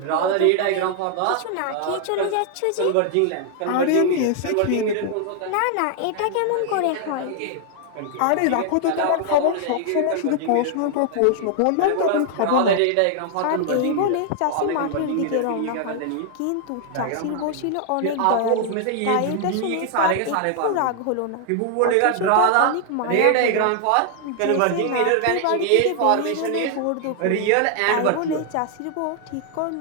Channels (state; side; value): different; both; correlation 0.00